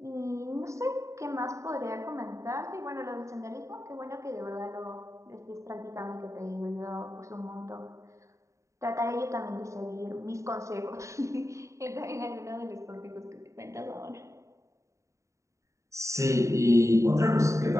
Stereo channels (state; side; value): late; left; 0.15 ms